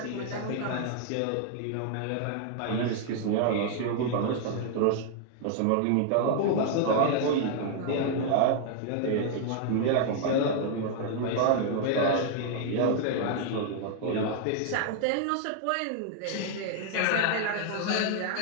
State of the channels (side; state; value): both; different; correlation 0.00